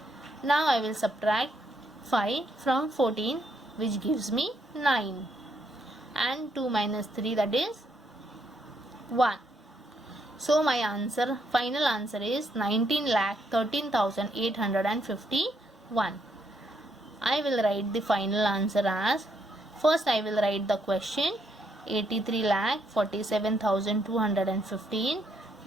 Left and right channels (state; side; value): normal; both; correlation 0.75